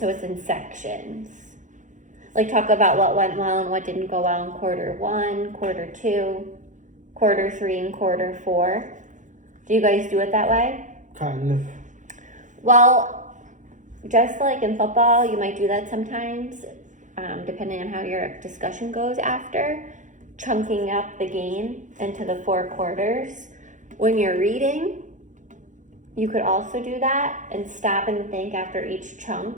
it's in sections. Like talk about what went well and what didn't go well in quarter 1, quarter 2, quarter 3, and quarter 4. Do you guys do it that way? Kind of. Well, just like in football, you might do that sometimes, depending on how your discussion goes after, chunking up the game into the 4 quarters. When you're reading, you could also do that and stop and think after each chunk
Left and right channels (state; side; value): late; left; 0.36 ms